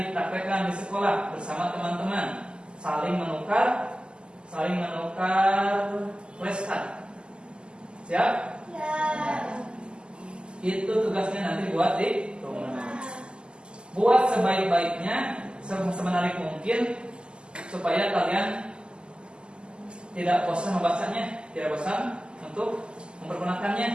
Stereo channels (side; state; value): left; late; 0.049 ms